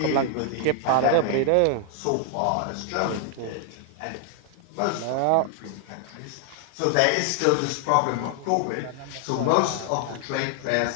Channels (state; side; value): different; both; correlation 0.00